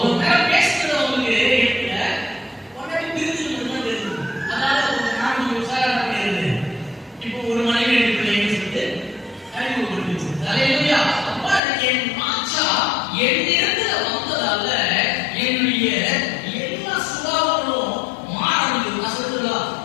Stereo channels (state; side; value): drops out; right; at 11.6 s